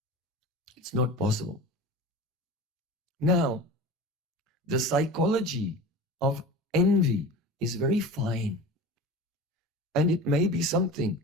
It's not possible. Now, the psychology of envy is very fine. And it may be something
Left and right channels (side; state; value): both; normal; correlation 0.34